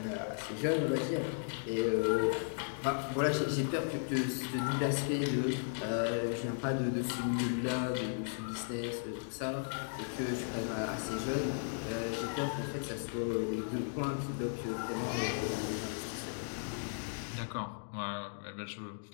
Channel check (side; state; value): right; silent; digital silence